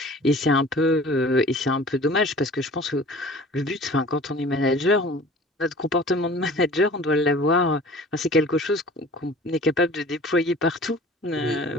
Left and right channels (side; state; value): both; normal; correlation 0.44